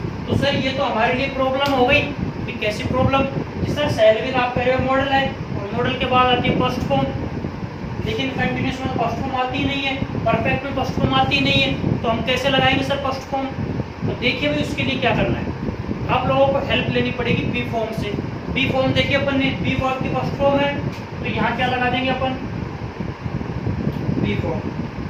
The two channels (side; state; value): both; identical; correlation 1.00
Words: तो सर ये तो हमारे लिए प्रॉब्लम हो गई। कि कैसी प्रॉब्लम? सर शैल विल आप कह रहे हो मॉडल है और मॉडल के बाद आती है फर्स्ट फॉर्म, लेकिन कंटिन्यूस में फर्स्ट फॉर्म आती ही नहीं है, परफेक्ट में फर्स्ट फॉर्म आती ही नहीं है, तो हम कैसे लगाएंगे सर फर्स्ट फॉर्म? तो देखिए भाई उसके लिए क्या करना है, आप लोगों को हेल्प लेनी पड़ेगी बी फॉर्म से। बी फॉर्म देखिए अपन ने बी वर्ब की फर्स्ट फॉर्म है, तो यहाँ क्या लगा देंगे अपन? B